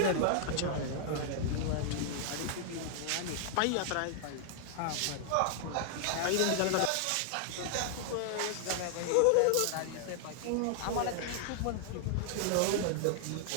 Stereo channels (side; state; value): both; different; correlation 0.00